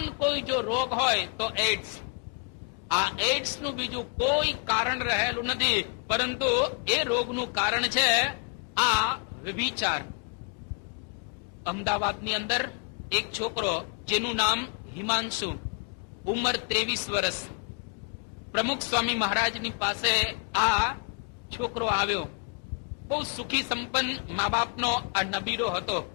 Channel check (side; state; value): right; quieter; 37.3 dB